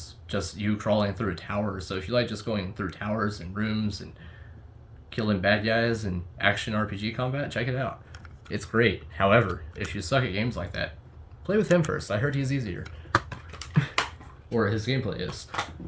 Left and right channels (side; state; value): both; identical; correlation 1.00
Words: just you crawling through towers, so if you like just going through towers and rooms and killing bad guys and action RPG combat, check it out. It's great. However, if you suck at games like that, play with him first. I heard he's easier. Or his gameplay is.